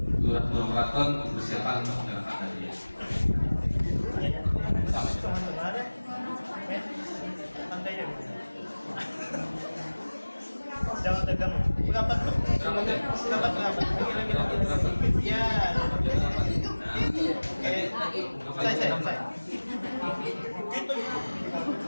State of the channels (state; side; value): inverted; both; correlation -1.00